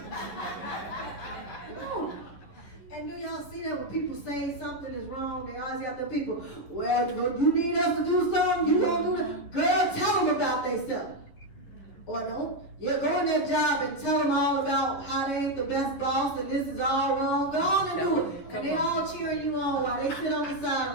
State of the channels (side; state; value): right; late; 11 ms